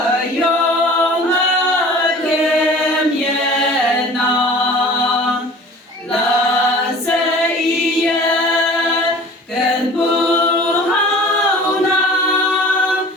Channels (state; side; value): normal; both; correlation 0.44